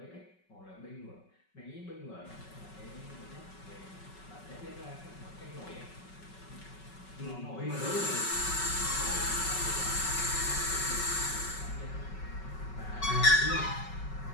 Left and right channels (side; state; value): right; late; 5.3 ms